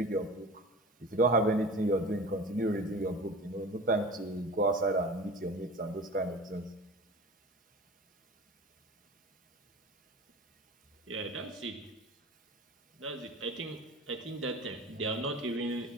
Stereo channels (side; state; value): both; normal; correlation 0.37